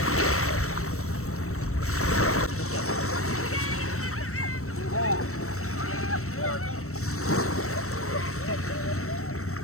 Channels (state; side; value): late; right; 0.63 ms